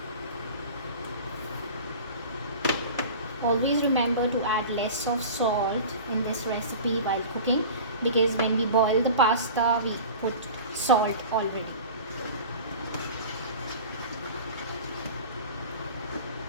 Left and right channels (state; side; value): inverted; both; correlation -0.37